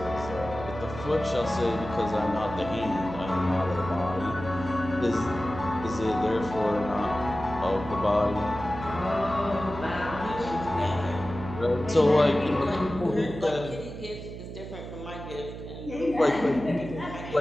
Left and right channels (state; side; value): noise; right; hum, 10 dB below the sound